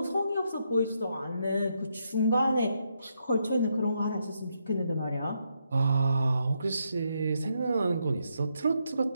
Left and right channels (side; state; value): both; inverted; correlation -0.79